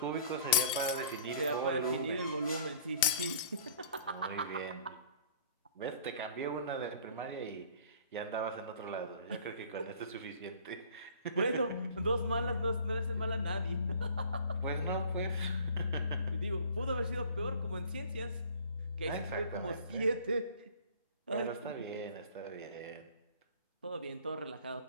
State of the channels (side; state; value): both; inverted; correlation -0.50